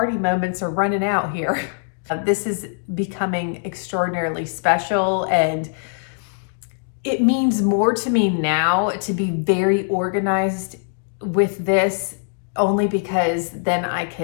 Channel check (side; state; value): right; silent; digital silence